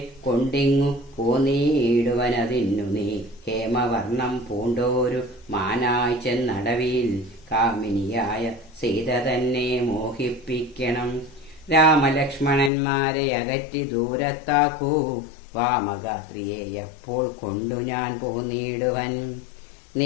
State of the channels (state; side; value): drops out; right; at 12.7 s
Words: കൊണ്ടിങ്ങു പോന്നീടുവനതിന്നു നീ ഹേമവർണം പൂണ്ടോരു മാനായി ചെന്നടവിൽ കാമിനിയായ സീത തന്നെ മോഹിപ്പിക്കണം. രാമലക്ഷ്മണന്മാരെ അകറ്റി ദൂരത്താക്കൂ, വാമഗാത്രിയെ അപ്പോൾ കൊണ്ടു ഞാൻ പോന്നിടുവൻ.